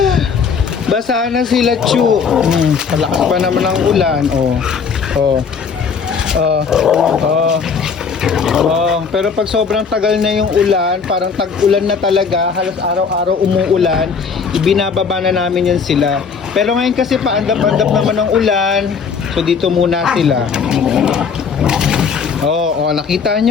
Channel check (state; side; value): quieter; right; 5.9 dB